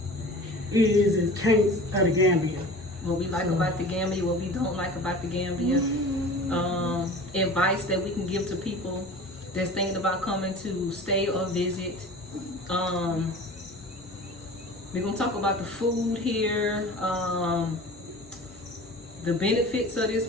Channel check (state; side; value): normal; both; correlation 0.39